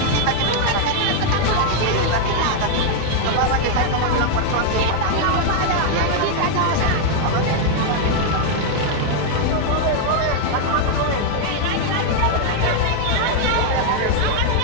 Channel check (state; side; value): different; both; correlation 0.00